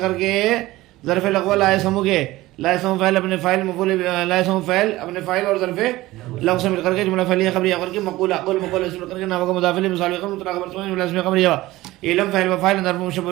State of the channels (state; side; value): quieter; left; 17.9 dB